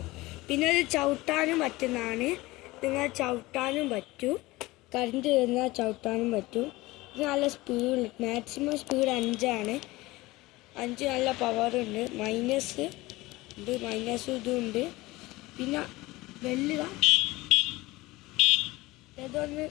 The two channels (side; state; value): right; quieter; 20.2 dB